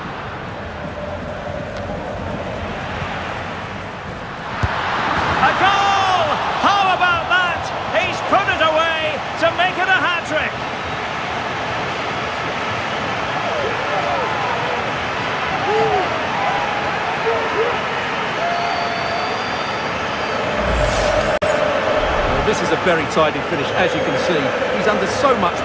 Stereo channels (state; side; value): identical; both; correlation 1.00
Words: A goal! How about that? He's put it away to make it a hat-trick. This is a very tidy finish, as you can see. He's under so much